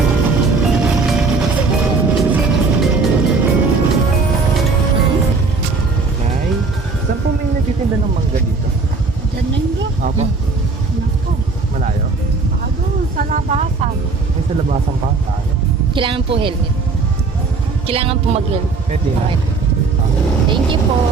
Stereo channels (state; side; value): quieter; left; 4.1 dB